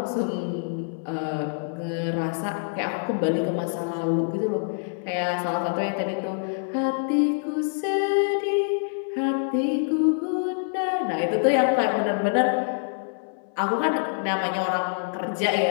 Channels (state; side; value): silent; right; 61 dB below the other